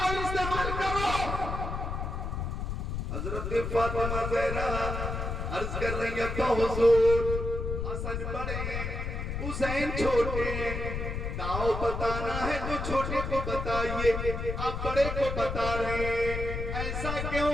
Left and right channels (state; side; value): noise; left; rumble, 3 dB below the sound